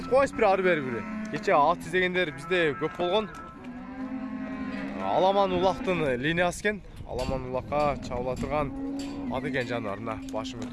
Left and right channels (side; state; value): both; identical; correlation 1.00